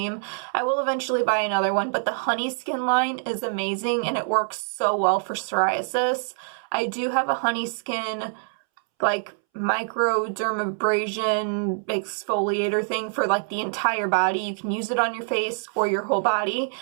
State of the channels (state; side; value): silent; left; 62 dB below the other